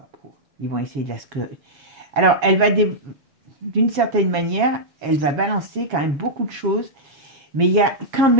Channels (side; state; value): left; late; 7.3 ms